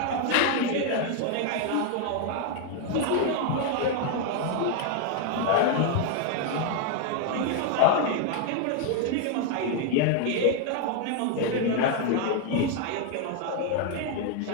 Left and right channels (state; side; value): different; both; correlation 0.00